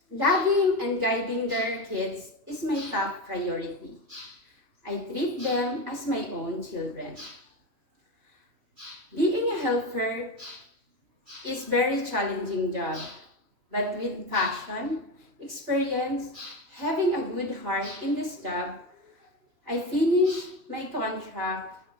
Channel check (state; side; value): late; left; 3.0 ms